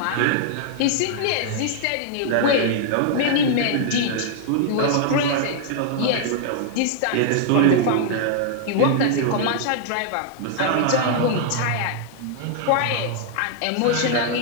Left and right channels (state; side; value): different; both; correlation -0.01